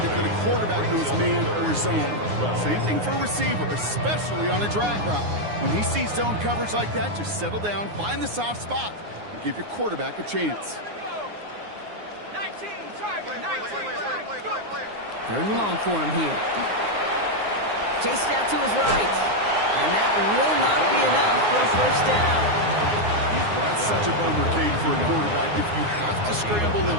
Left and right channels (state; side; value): late; left; 9.6 ms